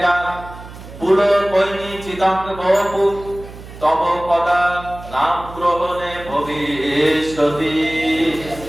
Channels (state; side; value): noise; right; hum, 15 dB below the sound